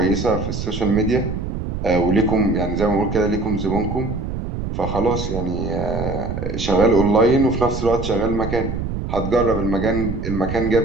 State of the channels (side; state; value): right; noise; rumble, 5 dB below the sound